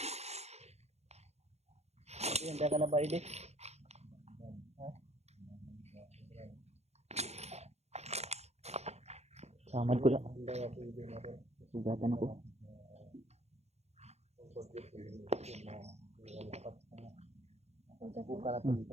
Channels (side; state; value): left; late; 0.31 ms